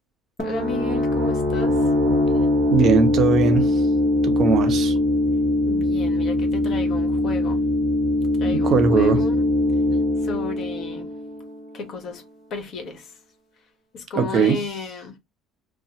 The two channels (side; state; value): both; normal; correlation 0.60